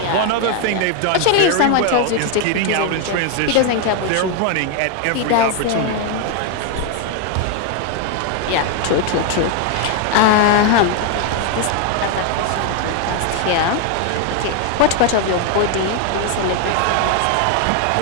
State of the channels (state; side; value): different; both; correlation 0.01